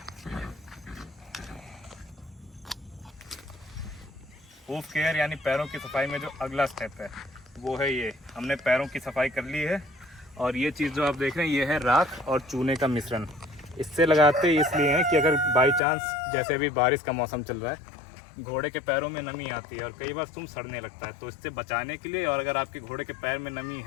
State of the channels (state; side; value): drops out; right; at 15.8 s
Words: हूफ केयर यानी पैरों की सफाई में जो अगला स्टेप है वो है ये। हमने पैरों की सफाई कर ली है, और ये चीज़ जो आप देख रहे हैं ये है राख और चूने का मिश्रण। इससे लगाते इसलिए हैं कि अगर बाई चांस, जैसे अभी बारिश का मौसम चल रहा है, घोड़े के पैरों में नमी आती है और कई बार तुम सड़ने लगता है, तो इससे बचाने के लिए, और अगर आपके घोड़े के पैर में नमी